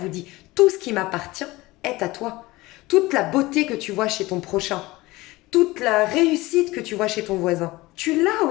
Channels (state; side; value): quieter; right; 20.1 dB